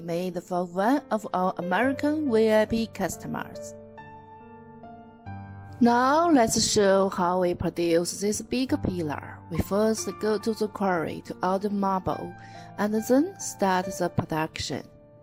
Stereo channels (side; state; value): both; identical; correlation 1.00